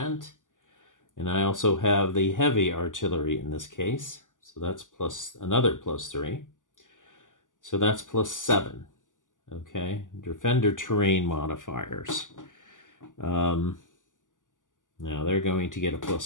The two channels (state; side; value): late; right; 0.88 ms